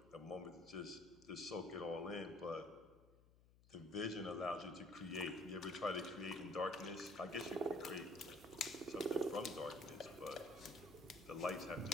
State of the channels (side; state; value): left; noise; hum, 25 dB below the sound